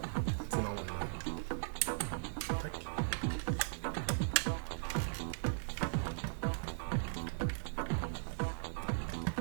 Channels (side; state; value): left; silent; digital silence